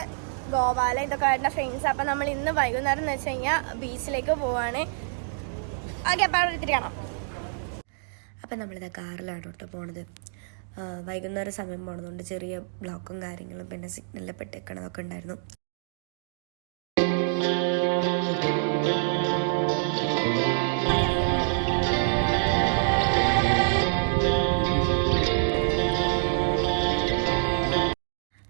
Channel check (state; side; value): silent; left; digital silence